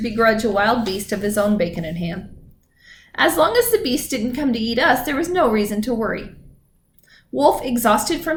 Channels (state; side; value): identical; both; correlation 1.00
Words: a wild beast of his own bacon and ham. As long as the beast didn't come to eat us, there was no reason to worry. Wolf, exhausted